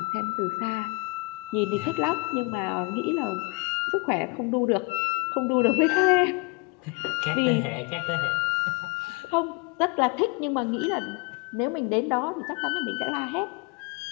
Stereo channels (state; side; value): quieter; right; 28.0 dB